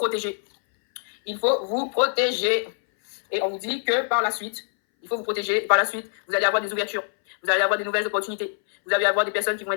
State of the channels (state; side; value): silent; right; 60 dB below the other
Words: Il faut vous protéger. Et on vous dit que par la suite, il faut vous protéger. Par la suite, vous allez avoir des ouvertures. Vous allez avoir des nouvelles opportunités. Vous allez avoir des personnes qui vont